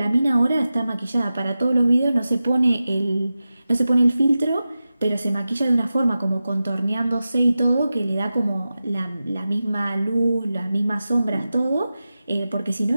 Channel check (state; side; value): inverted; both; correlation -0.93